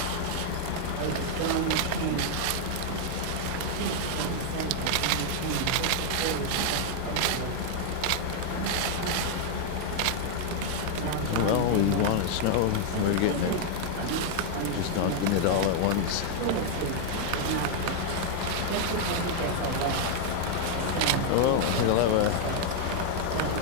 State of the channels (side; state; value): both; different; correlation 0.00